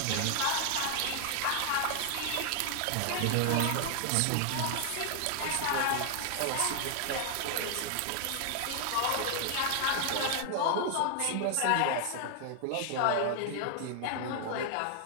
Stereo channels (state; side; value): different; both; correlation 0.00